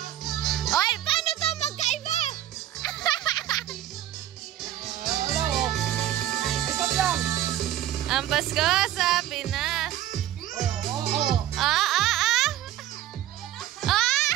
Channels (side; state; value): left; quieter; 12.6 dB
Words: Ang Pasko sa Pinas. Wala